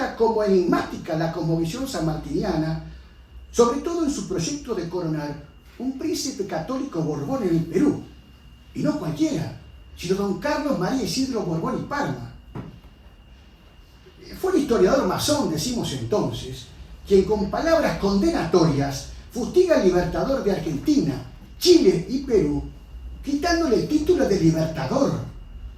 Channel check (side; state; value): both; identical; correlation 1.00